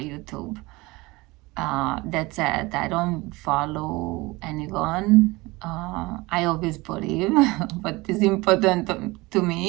That's it. I don't follow anyone. I always believe what is important to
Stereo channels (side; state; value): left; quieter; 22.4 dB